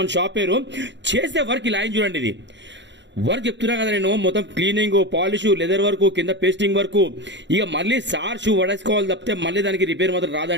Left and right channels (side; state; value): left; late; 0.52 ms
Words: మన షాప్ పేరు. చేసే వర్క్ ఇలా చూడండి, ఇది వర్క్ చెప్తున్నా కదా నేను, మొత్తం క్లీనింగ్, పాలిష్, లెదర్ వర్క్, కింద పేస్టింగ్ వర్క్. ఇక మళ్ళీ సార్ షూ వడేసుకోవాలి తప్పితే మళ్ళీ దానికి రిపేర్ మాత్రం